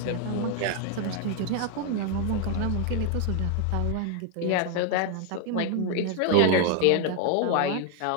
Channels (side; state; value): both; different; correlation 0.01